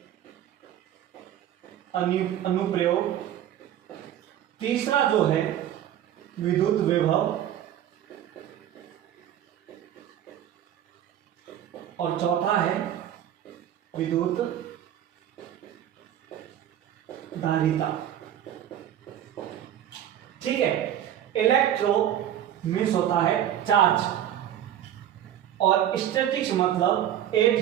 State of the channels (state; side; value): quieter; left; 10.9 dB